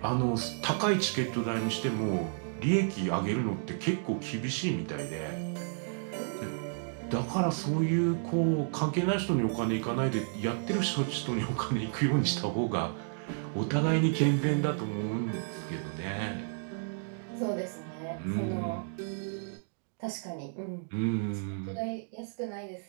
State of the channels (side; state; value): left; silent; digital silence